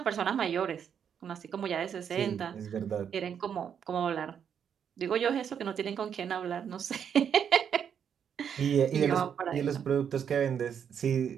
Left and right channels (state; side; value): quieter; left; 8.0 dB